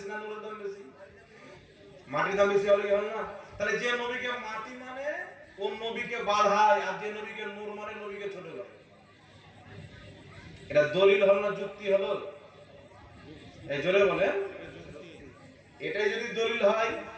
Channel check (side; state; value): both; identical; correlation 1.00